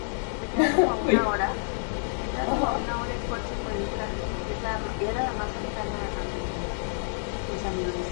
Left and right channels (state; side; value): silent; right; 59 dB below the other